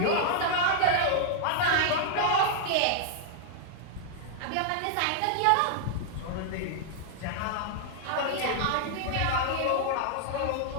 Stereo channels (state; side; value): different; both; correlation -0.01